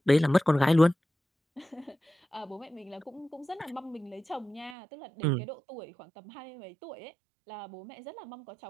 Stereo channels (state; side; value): drops out; left; at 4.8 s